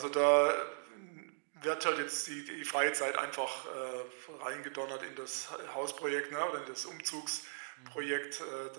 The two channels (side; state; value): left; silent; digital silence